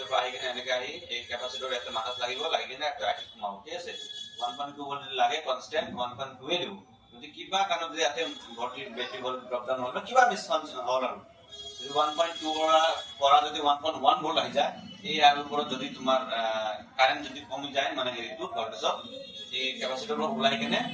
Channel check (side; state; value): both; identical; correlation 1.00